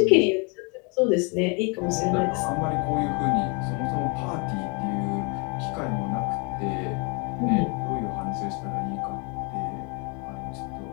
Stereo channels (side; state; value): right; quieter; 32.8 dB